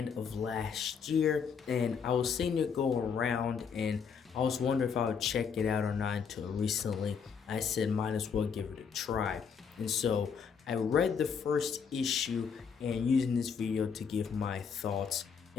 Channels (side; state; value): right; quieter; 6.4 dB